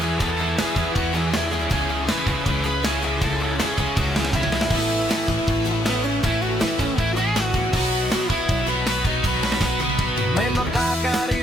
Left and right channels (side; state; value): both; normal; correlation 0.74